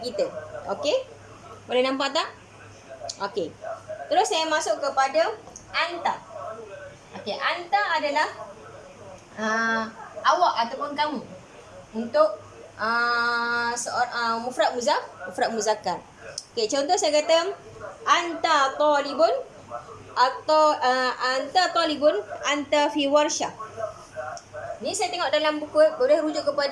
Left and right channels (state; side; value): identical; both; correlation 1.00